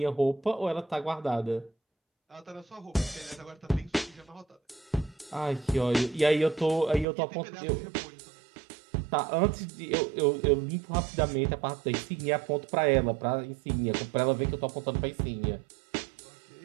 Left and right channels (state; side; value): drops out; left; at 7.1 s